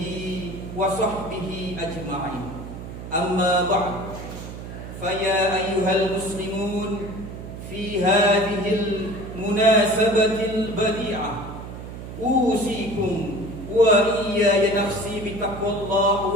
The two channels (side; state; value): right; noise; hum, 11 dB below the sound